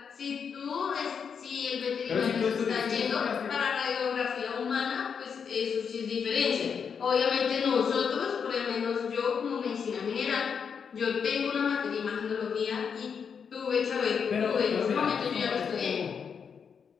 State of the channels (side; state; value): right; quieter; 6.6 dB